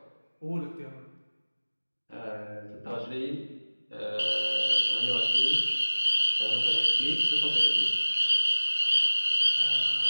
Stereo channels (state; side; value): inverted; both; correlation -1.00